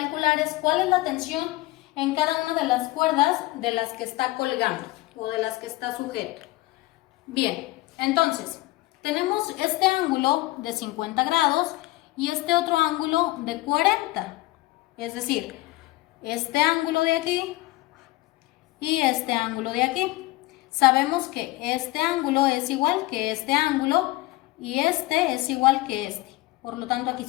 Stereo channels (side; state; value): right; quieter; 19.4 dB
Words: es cuál es la tensión en cada una de las cuerdas de las que está colgando o de las que está sujeto. Bien, entonces tenemos este ángulo de 50 grados y este otro ángulo de 40, es decir, este ángulo de aquí y este ángulo de aquí. Sabemos que este ángulo es igual que este ángulo y este es igual que este. Por lo tanto, aquí